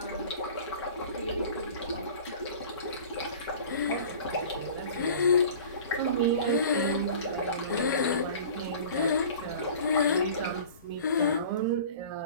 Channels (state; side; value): inverted; both; correlation -0.42